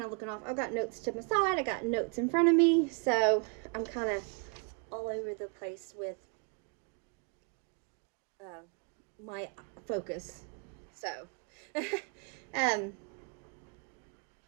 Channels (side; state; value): left; quieter; 36.5 dB